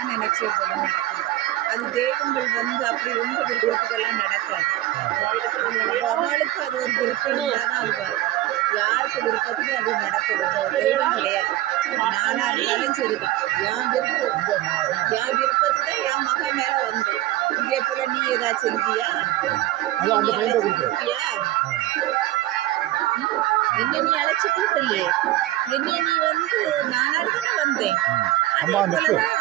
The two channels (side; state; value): left; quieter; 15.7 dB